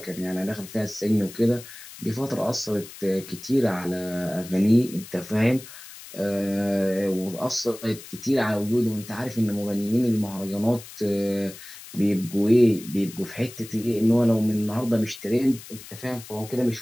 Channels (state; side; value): noise; left; hiss, 16 dB below the sound